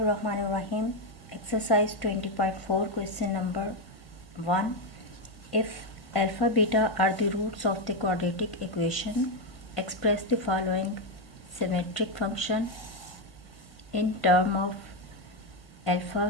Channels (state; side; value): late; right; 1.7 ms